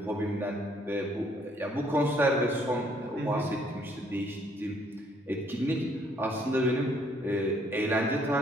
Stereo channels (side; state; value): both; normal; correlation 0.65